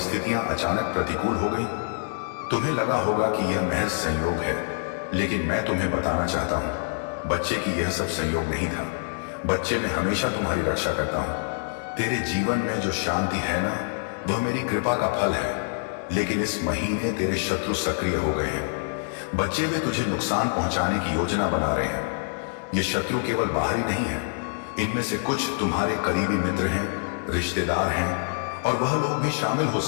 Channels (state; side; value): silent; right; digital silence